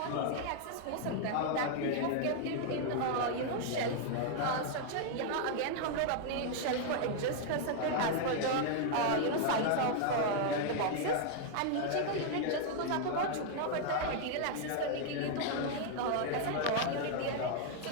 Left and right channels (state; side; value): different; both; correlation 0.00